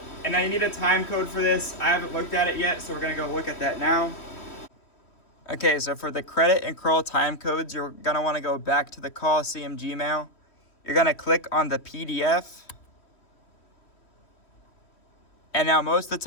And now you need a time code for this. I haven't looked at it yet, so we're going to go look at that now. Okay, so for the credit and crawl time codes, you're going to want to go back to the Coliseum Gmail. You're going to click on the PDF. And now most of the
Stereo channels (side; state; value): right; late; 3.1 ms